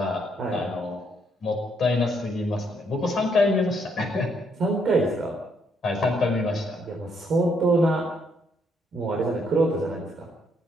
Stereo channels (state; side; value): normal; both; correlation 0.72